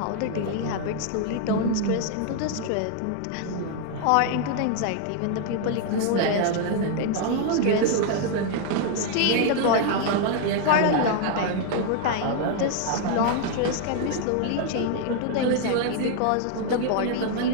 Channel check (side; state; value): both; different; correlation 0.00